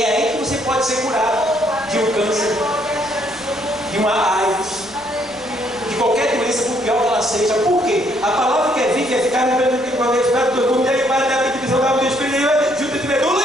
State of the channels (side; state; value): left; noise; rumble, 28 dB below the sound